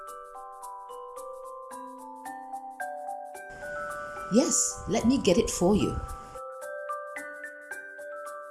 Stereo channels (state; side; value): identical; both; correlation 1.00